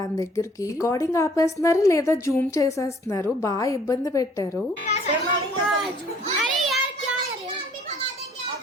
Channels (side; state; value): both; normal; correlation 0.57